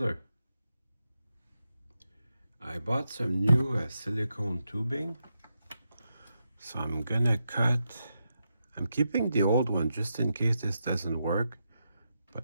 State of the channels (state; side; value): inverted; both; correlation -0.85